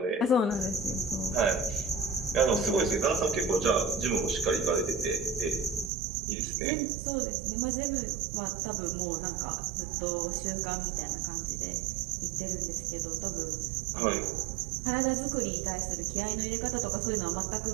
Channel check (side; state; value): left; drops out; at 5.9 s